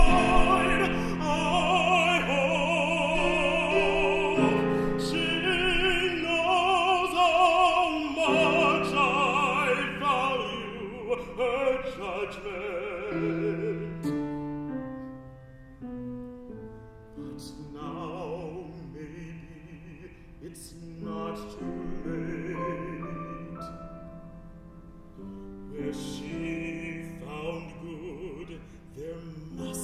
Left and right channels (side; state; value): both; identical; correlation 1.00